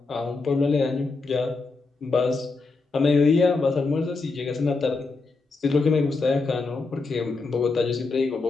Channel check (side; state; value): right; quieter; 3.9 dB